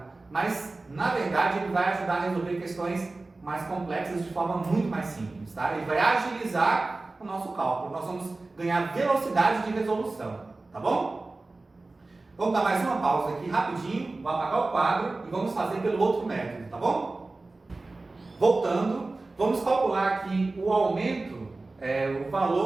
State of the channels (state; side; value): quieter; left; 3.3 dB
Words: mas na verdade ele vai ajudar a resolver questões mais complexas de forma muito mais simples, tá? Ele vai agilizar o nosso cálculo, nós vamos ganhar velocidade de resolução, tá bom? Vamos dar mais uma pausa aqui rapidinho, vou apagar o quadro e vamos fazer pelo outro método, tá bom? Voltando, vamos calcular aqui o aumento, o